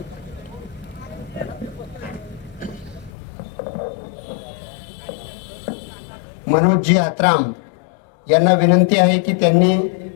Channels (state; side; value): drops out; right; at 3.1 s